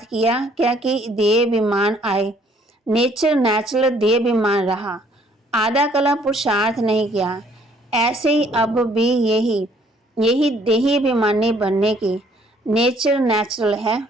किया क्या कि देह अभिमान आए? नेचर नेचुरल देह अभिमान रहा, आधा कला पुरुषार्थ नहीं किया। ऐसे ही अब भी यही देही अभिमानी बनने की नेचर नेचुरल है।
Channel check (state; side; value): normal; both; correlation 0.62